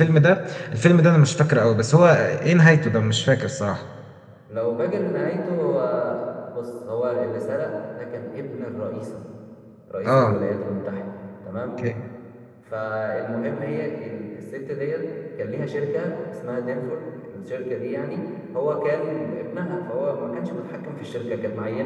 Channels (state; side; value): identical; both; correlation 1.00